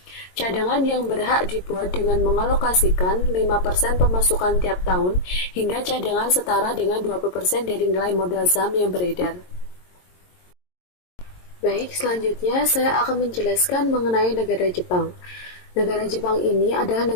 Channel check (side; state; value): right; late; 22 ms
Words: Cadangan yang berhak dibuat dengan mengalokasikan 5% pemasukan tiap tahun hingga cadangan setara dengan 20% dari nilai modal saham yang beredar. Baik, selanjutnya saya akan menjelaskan mengenai negara Jepang. Negara Jepang ini adalah